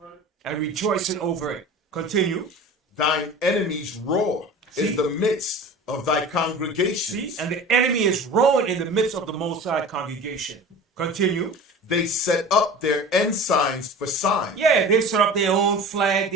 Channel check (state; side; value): normal; both; correlation 0.37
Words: and rejoicing over it. Continue. Thine enemies roar in the midst of thy congregation. See? And the enemy is roaring in the midst of the Most High congregation. Continue. They set up their ensigns for signs. Yeah, they set up their own flag,